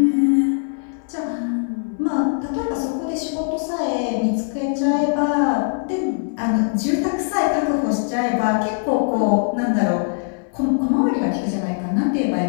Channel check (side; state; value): right; silent; digital silence